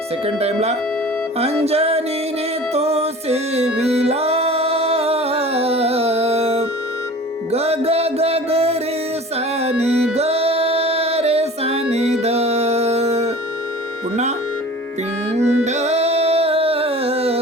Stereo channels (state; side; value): normal; both; correlation 0.41